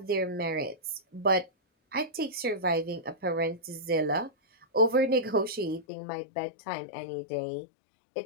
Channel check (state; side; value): drops out; right; at 5.9 s